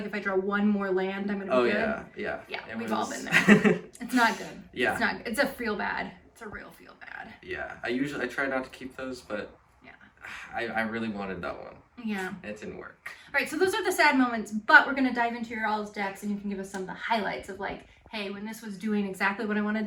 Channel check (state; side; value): identical; both; correlation 1.00